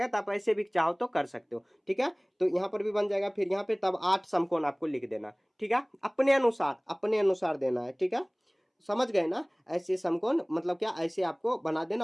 तो आप ऐसे भी चाहो तो कर सकते हो, ठीक है? तो यहाँ पर भी बन जाएगा, फिर यहाँ पे तब 8 समकोण आपको लिख देना, ठीक है? अपने अनुसार देना है, ठीक है? समझ गए ना? ऐसे समकोण मतलब क्या, ऐसे आपको बना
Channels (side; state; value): both; identical; correlation 1.00